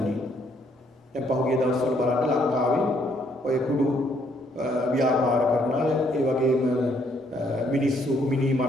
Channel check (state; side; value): normal; both; correlation 0.68